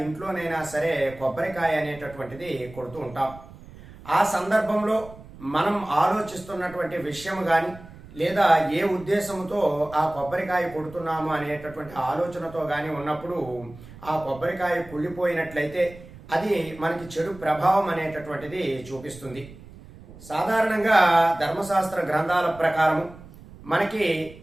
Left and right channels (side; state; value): right; noise; rumble, 19 dB below the sound